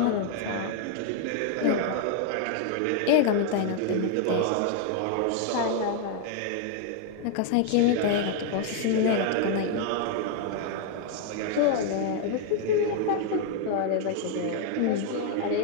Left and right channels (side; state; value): both; different; correlation 0.00